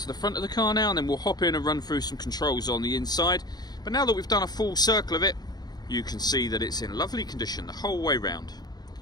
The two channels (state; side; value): late; right; 0.19 ms